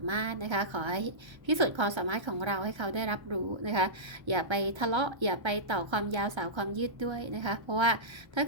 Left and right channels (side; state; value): left; late; 1.3 ms